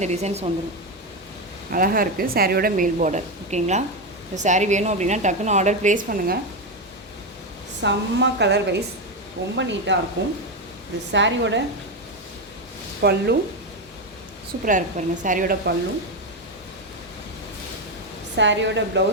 டிசைன்ஸ் வந்துடும், அழகாக இருக்குது. சாரியோட மேல் பார்டர் ஓகேங்களா. இந்த சாரீ வேணும் அப்படின்னா டக்குன்னு ஆர்டர் ப்ளேஸ் பண்ணுங்கள். செம்ம கலர் வைஸ் ரொம்ப நீட்டாக இருக்கும். இது சாரியோட பல்லு சூப்பராக இருக்குது பாருங்கள். சாரியோட பல்லு, சாரியோட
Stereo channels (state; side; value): normal; both; correlation 0.10